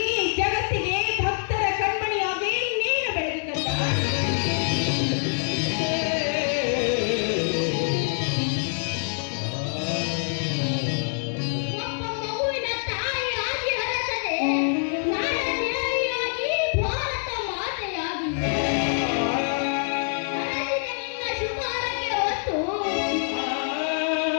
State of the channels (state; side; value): silent; right; digital silence